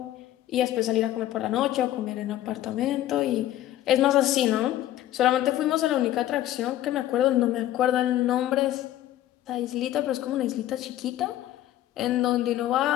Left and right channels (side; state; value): right; quieter; 13.4 dB